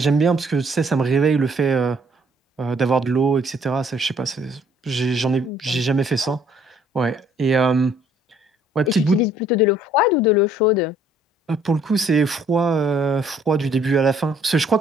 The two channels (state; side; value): normal; both; correlation 0.61